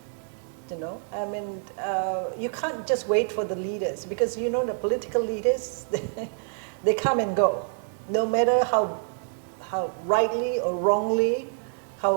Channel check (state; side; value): silent; left; 60 dB below the other